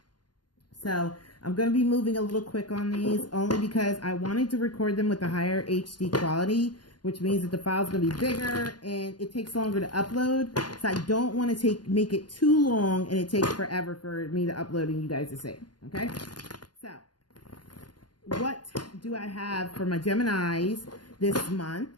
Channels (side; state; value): right; late; 0.70 ms